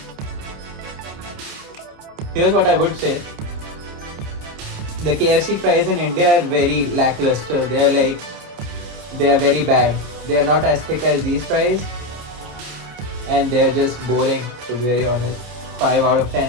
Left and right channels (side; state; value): left; late; 28 ms